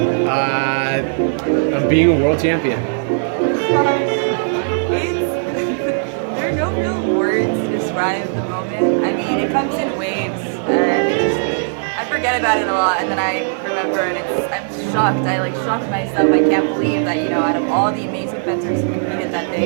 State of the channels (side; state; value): left; silent; digital silence